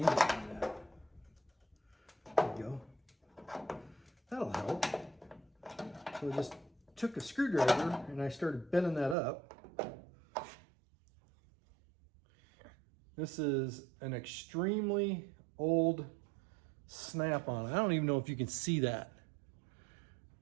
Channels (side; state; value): left; drops out; at 9.2 s